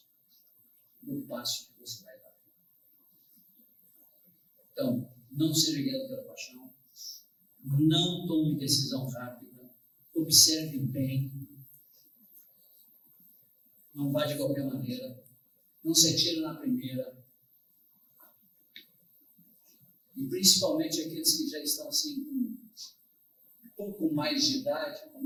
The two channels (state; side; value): identical; both; correlation 1.00